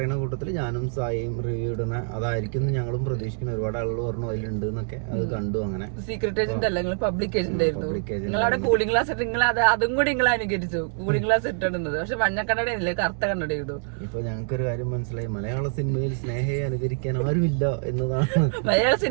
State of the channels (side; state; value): left; silent; 61 dB below the other